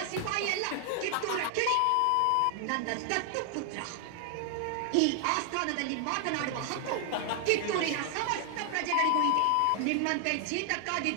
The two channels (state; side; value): different; both; correlation 0.00